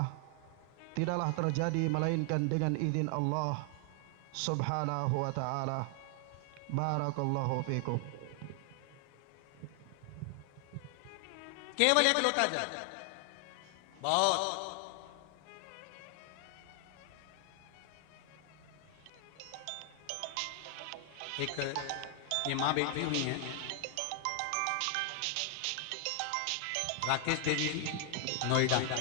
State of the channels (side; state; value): both; different; correlation 0.00